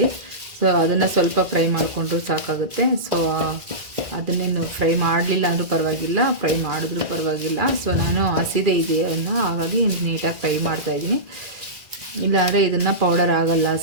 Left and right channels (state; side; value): late; left; 1.9 ms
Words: ಸೊ ಅದನ್ನು ಸ್ವಲ್ಪ ಫ್ರೈ ಮಾಡಿಕೊಂಡ್ರೂ ಸಾಕಾಗುತ್ತೆ. ಸೊ ಅದನ್ನೇನು ಫ್ರೈ ಮಾಡಲಿಲ್ಲ ಅಂದರೂ ಪರವಾಗಿಲ್ಲ, ಫ್ರೈ ಮಾಡಿದ್ರೂ ಪರವಾಗಿಲ್ಲ. ಸೊ ನಾನು ಹಸಿದೆ ಇದೆಯನ್ನು ಹಾಗಾಗಿ ನೀಟಾಗಿ ಫ್ರೈ ಮಾಡ್ತಾಯಿದ್ದೀನಿ, ಇಲ್ಲಾಂದರೆ ಇದನ್ನು ಪೌಡರ್ ಆಗಲ್ಲ